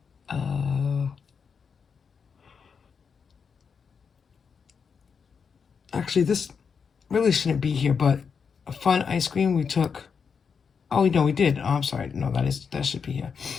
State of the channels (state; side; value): quieter; right; 6.1 dB